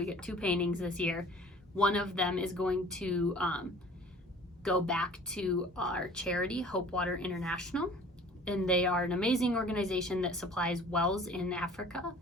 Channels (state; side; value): normal; both; correlation 0.48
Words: we get 2 paintings this year. One of them is going to go back to our charity, Hope Water International. and they are an amazing organization that supplies wells in Africa